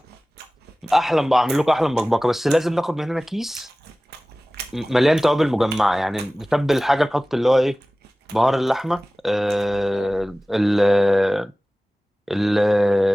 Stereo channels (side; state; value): both; normal; correlation 0.98